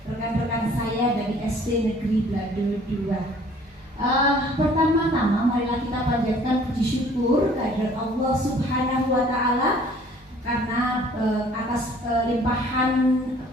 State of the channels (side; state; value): both; normal; correlation 0.55